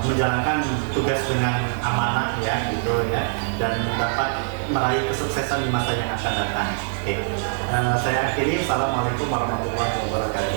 menjalankan tugas dengan amanah ya, gitu ya, dan dapat meraih kesuksesan di masa yang akan datang. Oke, saya akhiri. Assalamualaikum warahmatullahi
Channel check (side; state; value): left; silent; 63 dB below the other